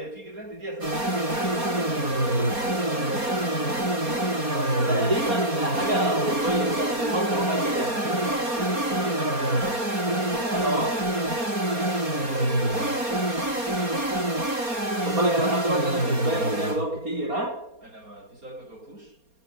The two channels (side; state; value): left; late; 4.3 ms